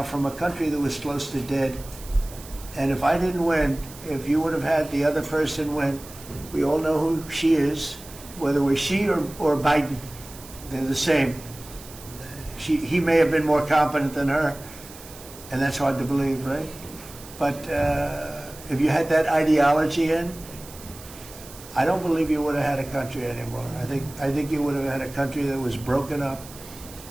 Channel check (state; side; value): noise; right; hiss, 17 dB below the sound